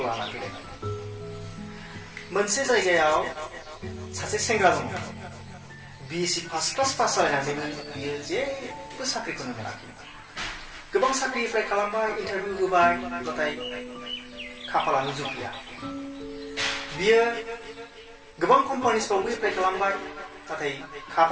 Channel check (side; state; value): both; identical; correlation 1.00